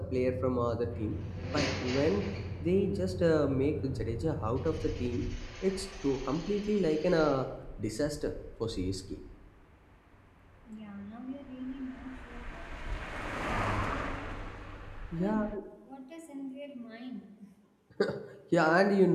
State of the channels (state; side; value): identical; both; correlation 1.00